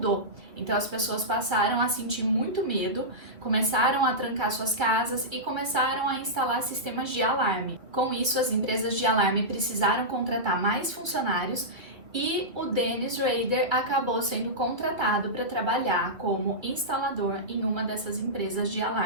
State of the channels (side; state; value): left; late; 2.4 ms